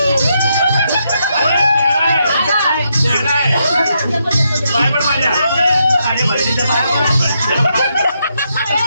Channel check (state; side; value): inverted; both; correlation -0.80